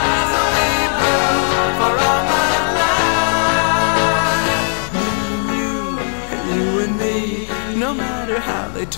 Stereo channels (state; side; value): silent; right; digital silence